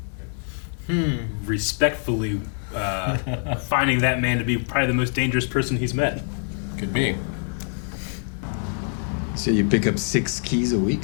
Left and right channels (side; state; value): right; silent; 56 dB below the other